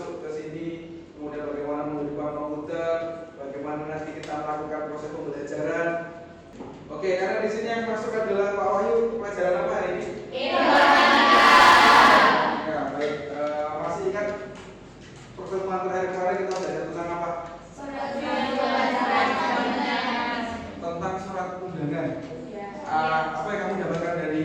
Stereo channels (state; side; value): identical; both; correlation 1.00